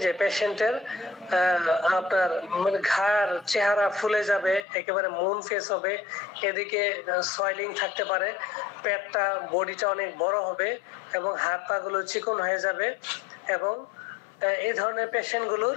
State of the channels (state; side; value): drops out; right; at 4.7 s